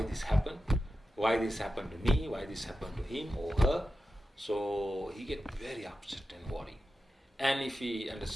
this happened to me, why this happened to him or her. So he get very upset and worried. And if we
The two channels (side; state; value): both; normal; correlation 0.91